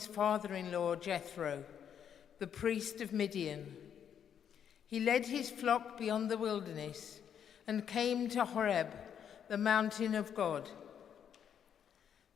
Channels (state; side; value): quieter; right; 8.6 dB